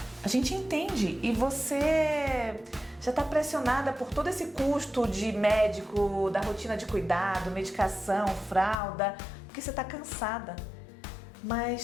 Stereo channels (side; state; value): right; drops out; at 8.8 s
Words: a gente entende e você já está pressionada por todo esse custo de médico, da rotina de cuidado, medicação, fralda, porque você está cansada.